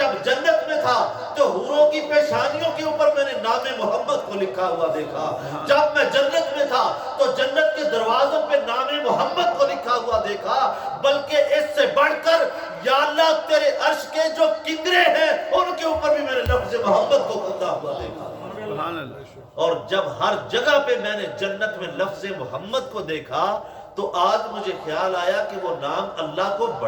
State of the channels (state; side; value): identical; both; correlation 1.00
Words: جنت میں تھا تو حوروں کی پیشانیوں کے اوپر میں نے نام محمد کو لکھا ہوا دیکھا۔ جب میں جنت میں تھا تو جنت کے دروازوں پہ نام محمد کو لکھا ہوا دیکھا، بلکہ اس سے بڑھ کر یا اللہ تیرے عرش کے جو کنگرے ہیں ان کے اوپر بھی میں نے لفظ محمد کو کندہ ہوا دیکھا۔ سبحان اللہ۔ اور جب ہر جگہ پہ میں نے جنت میں لفظ محمد کو دیکھا تو آج مجھے خیال آیا کہ وہ نام اللہ کو